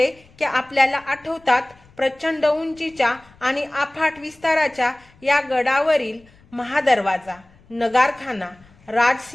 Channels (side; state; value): left; noise; rumble, 28 dB below the sound